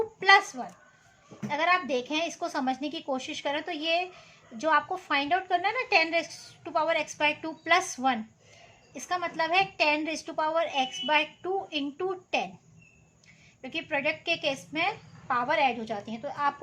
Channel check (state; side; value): identical; both; correlation 1.00